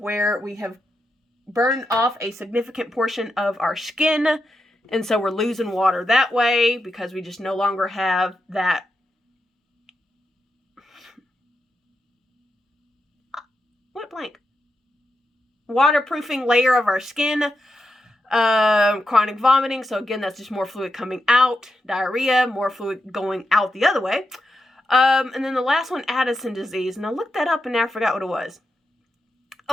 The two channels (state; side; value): normal; both; correlation 0.86